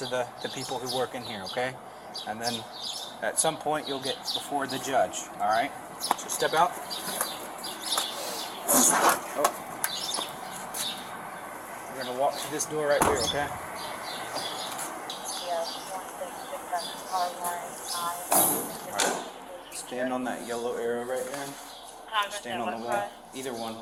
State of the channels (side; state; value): both; identical; correlation 1.00